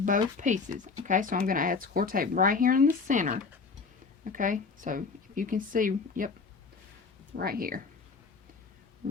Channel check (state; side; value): quieter; right; 4.7 dB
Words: both pieces. Okay, so I'm going to add score tape right here in the center. Okay, so if you can see, yep, right here.